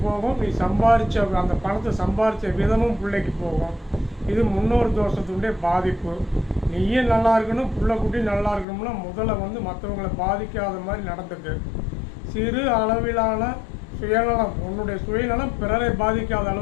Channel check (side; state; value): right; drops out; at 8.7 s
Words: போகும், நீ சம்பாரித்த அந்த பணத்தை சம்பாரித்த விதமும் பிள்ளைக்கு போகும். இது முன்னோர் தோஷத்துடைய பாதிப்பு. நீயும் நல்லா இருக்கணும், பிள்ளை குட்டி நல்லா இருக்கணும்னா முதல்ல மற்றவங்களை பாதிக்காத மாதிரி நடந்துக்கு. சிறு அளவிலான சுயநலம், உன்னுடைய சுயநலம் பிறரை பாதிக்காத